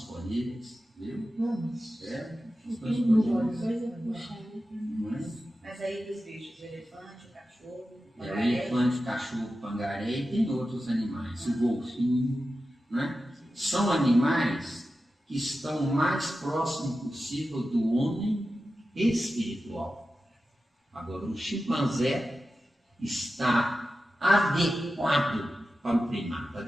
viu? Não, mas Estamos não disponíveis. vai. Não é? Mas aí dos bichos, o elefante, o cachorro, o O pangaré. elefante, o cachorro, o pangaré e tem outros animais, o golfinho, né? São animais que estão o mais próximo possível do homem espiritual. Agora, o chimpanzé está adequado para o primata,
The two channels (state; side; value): normal; both; correlation 0.93